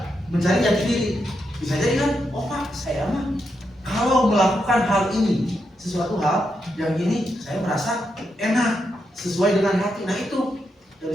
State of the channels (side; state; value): both; normal; correlation 0.83